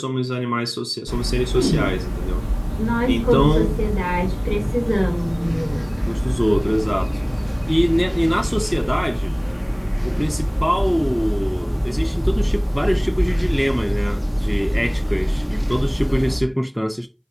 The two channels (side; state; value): both; identical; correlation 1.00